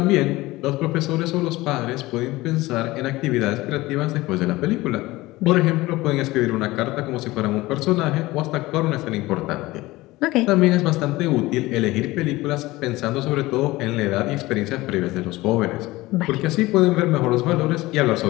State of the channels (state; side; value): quieter; right; 19.3 dB